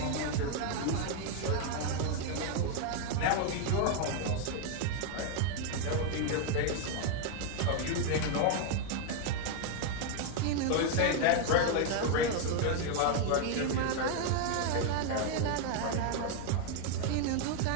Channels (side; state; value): both; different; correlation 0.00